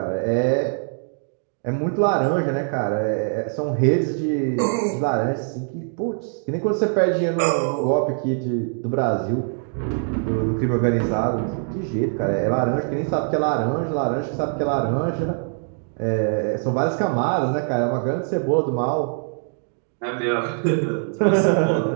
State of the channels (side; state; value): left; silent; 57 dB below the other